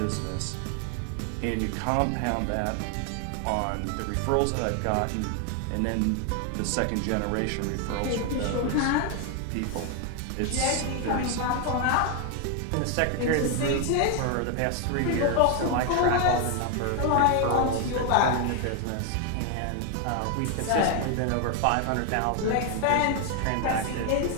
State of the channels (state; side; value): different; both; correlation 0.01